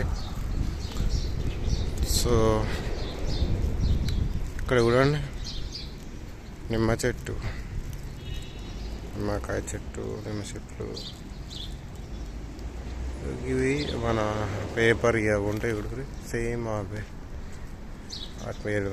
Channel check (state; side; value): identical; both; correlation 1.00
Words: సో ఇక్కడ చూడండి, నిమ్మకాయ చెట్టు, నిమ్మ చెట్లు. ఇవి మన పేపర్ ఇవి ఉంటాయి చూడండి, సేమ్ అవే. ఆ